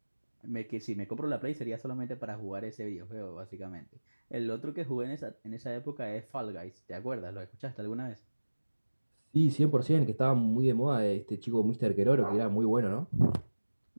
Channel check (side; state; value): both; inverted; correlation -1.00